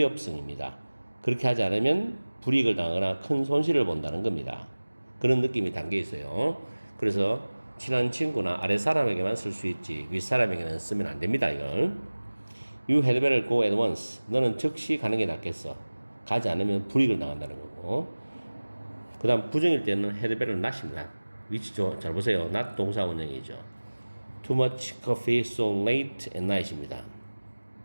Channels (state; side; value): inverted; both; correlation -1.00